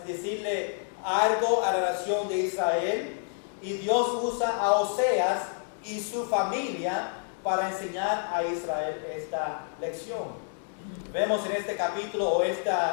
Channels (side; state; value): right; silent; 59 dB below the other